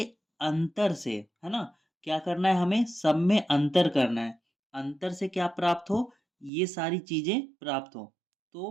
अंतर से, है ना, क्या करना है, हमें सब में अंतर करना है। अंतर से क्या प्राप्त हो, ये सारी चीजें प्राप्त हो।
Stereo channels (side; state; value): left; drops out; at 6.5 s